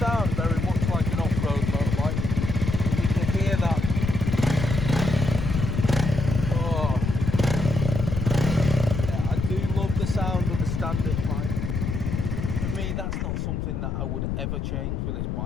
very much like an off-road motorbike, and you can hear that. Oh, yeah, I do love the sound of the standard bike. For me, that's not something that I would ever change with this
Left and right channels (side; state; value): left; noise; rumble, 2 dB below the sound